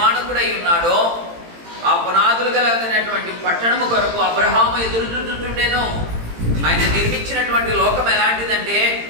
ఉన్నాడో ఆ పునాదులు కలిగినటువంటి పట్టణము కొరకు అబ్రహాము ఎదురు చూస్తుండేను. ఆయన నిర్మించినటువంటి లోకం ఎలాంటిదంటే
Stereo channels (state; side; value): late; left; 18 ms